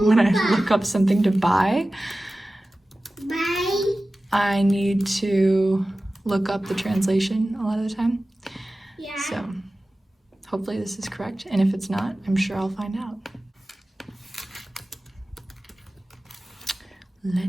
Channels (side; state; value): both; normal; correlation 0.96